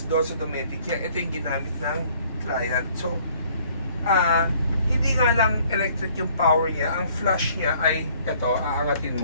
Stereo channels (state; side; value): inverted; both; correlation -0.59